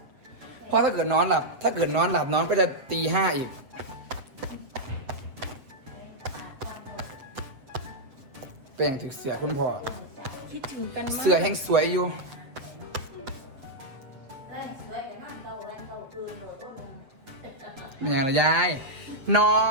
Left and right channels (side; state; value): left; late; 7.8 ms